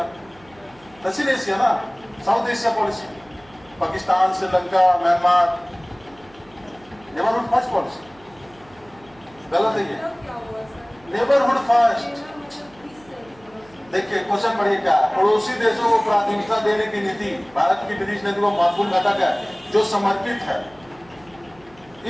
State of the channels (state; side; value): noise; right; hum, 27 dB below the sound